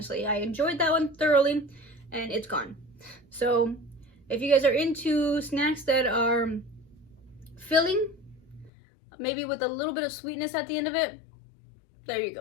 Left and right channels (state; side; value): drops out; right; at 8.7 s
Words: I enjoyed that one thoroughly, and it's gone. So if you guys are into snacks that are filling, maybe with a little bit of sweetness at the end of it, there you